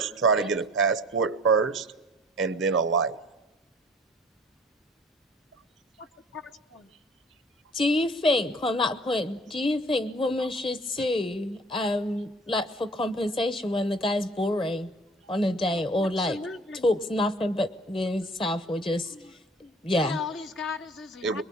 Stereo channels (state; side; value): normal; both; correlation 0.50